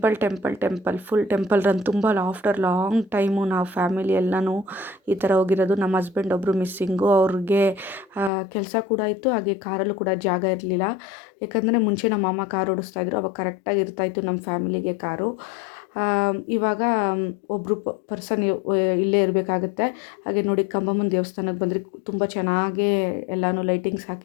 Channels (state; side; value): drops out; right; at 8.3 s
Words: full temple run. ತುಂಬ ಆಫ್ಟರ್ ಲಾಂಗ್ ಟೈಮು ನಾವು ಫ್ಯಾಮಿಲಿ ಎಲ್ಲನೂ ಈ ಥರ ಹೋಗಿರೋದು. ನಮ್ಮ ಹಸ್ಬೆಂಡ್ ಒಬ್ಬರು ಮಿಸ್ಸಿಂಗು. ಅವ್ರಿಗೆ ಕೆಲಸ ಕೂಡ ಇತ್ತು, ಹಾಗೆ ಕಾರಲ್ಲೂ ಕೂಡ ಜಾಗ ಇರಲಿಲ್ಲ. ಯಾಕಂದರೆ ಮುಂಚೆ ನಮ್ಮ ಮಾಮ ಕಾರ್ ಓಡಿಸ್ತಾಯಿದ್ರು, ಅವಾಗ ಕರೆಕ್ಟಾಗಿ ಇರ್ತಾಯಿತ್ತು ನಮ್ಮ ಫ್ಯಾಮಿಲಿಗೆ ಕಾರು. ಇವಾಗ ಒಬ್ಬರು ಪರ್ಸನ್ ಇಲ್ಲೇ ಇರಬೇಕಾಗತ್ತೆ. ಹಾಗೆ ನೋಡಿ, ಕಂಬಮ್ಮನ ದೇವಸ್ಥಾನಕ್ಕೆ ಬಂದರೆ ತುಂಬ ಚೆನ್ನಾಗೇ ಎಲ್ಲನೂ ಲೈಟಿಂಗ್ಸ್